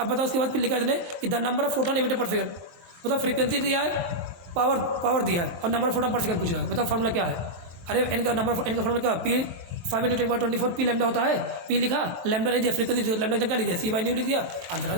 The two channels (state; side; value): late; left; 23 ms